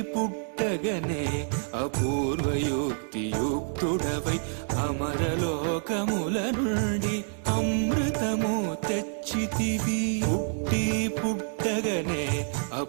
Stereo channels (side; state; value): left; silent; digital silence